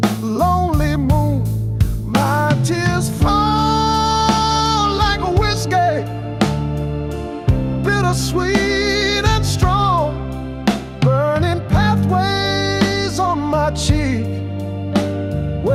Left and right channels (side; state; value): both; identical; correlation 1.00